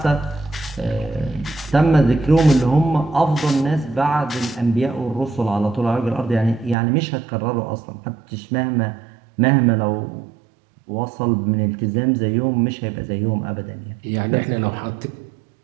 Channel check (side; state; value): left; drops out; at 6.8 s